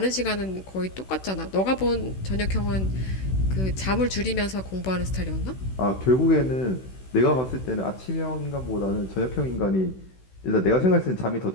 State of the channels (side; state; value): right; late; 16 ms